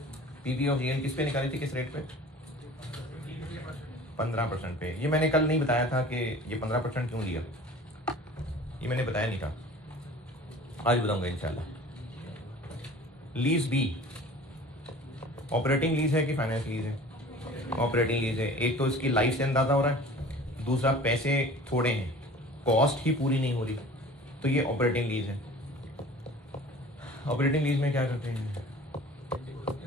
पीबी ऑफ जीएल किस पे निकाली थी, किस रेट पे? 15% पे। ये मैंने कल नहीं बताया था कि ये 15% क्यों लिया, ये मैंने बताया नहीं था, आज बताऊंगा इंशाल्लाह। लीज बी ऑपरेटिंग लीज है कि फाइनेंस लीज है? ऑपरेटिंग लीज है। एक तो इसकी लाइफ से अंदाजा हो रहा है, दूसरा पैसे थोड़े हैं, कॉस्ट ही पूरी नहीं हो रही, तो ये ऑपरेटिंग लीज है। ऑपरेटिंग लीज में क्या करते हैं?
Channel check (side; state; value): both; normal; correlation 0.43